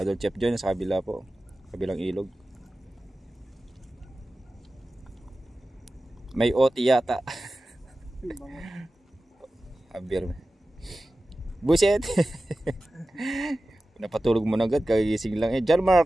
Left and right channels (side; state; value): both; normal; correlation 0.95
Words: Chef John sa kabila po, kabilang ilog. May OT yata. Abir. Buset. Napatulog mo na agad, kagising lang. John